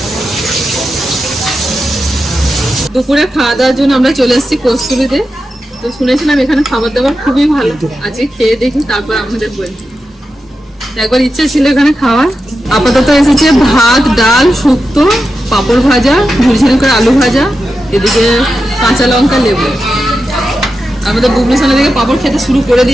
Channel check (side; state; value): both; normal; correlation 0.90